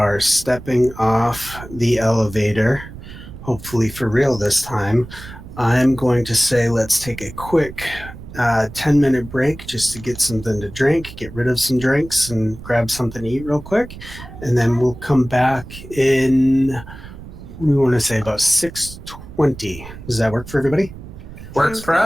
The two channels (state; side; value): noise; right; rumble, 15 dB below the sound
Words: stepping off the elevator, hopefully for real this time, I'm going to say let's take a quick 10-minute break just to get something to drink, get rid of some drinks, and grab something to eat real quick. And then we'll come back in, we want to say about 6:20. Does that work for everybody? Works for